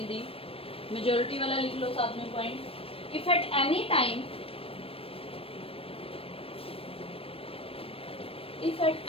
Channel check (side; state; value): right; late; 0.28 ms